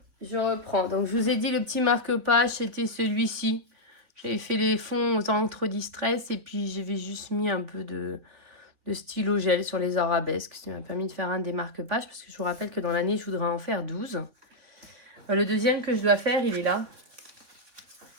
je reprends. Donc, je vous ai dit, le petit marque-page, c'était celui-ci. J'avais fait les fonds aux encres distress et puis j'avais juste mis un peu de stylo gel sur les arabesques. Ça m'a permis de faire un des marque-pages parce que je vous rappelle que dans l'année, je voudrais en faire 12. Le deuxième que je dois faire, il est là.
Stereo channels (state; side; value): late; left; 3.6 ms